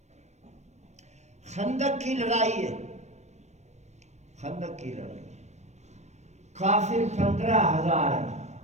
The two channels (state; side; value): late; left; 0.33 ms